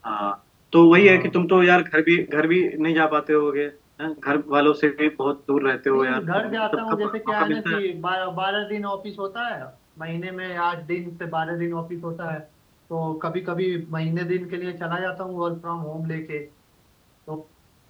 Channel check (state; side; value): identical; both; correlation 1.00